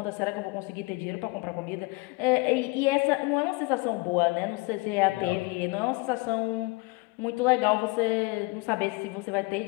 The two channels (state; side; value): quieter; right; 25.8 dB